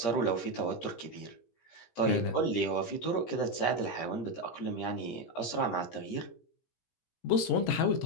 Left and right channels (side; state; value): right; late; 17 ms